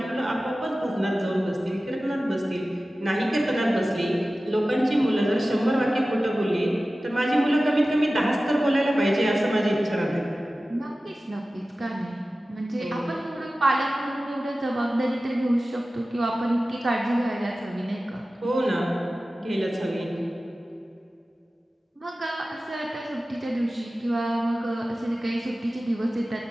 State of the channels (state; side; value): normal; both; correlation 0.96